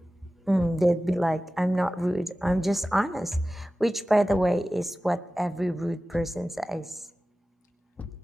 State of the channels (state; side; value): normal; both; correlation 0.96